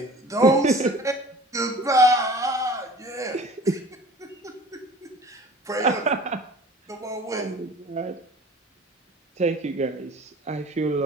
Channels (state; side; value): normal; both; correlation 0.45